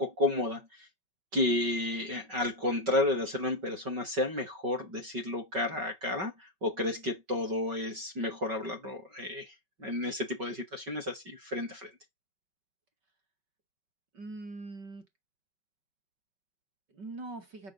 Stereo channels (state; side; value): late; left; 5.3 ms